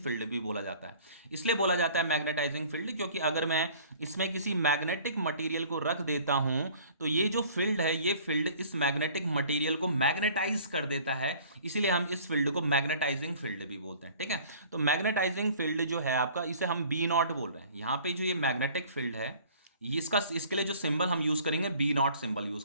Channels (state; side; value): inverted; both; correlation -0.50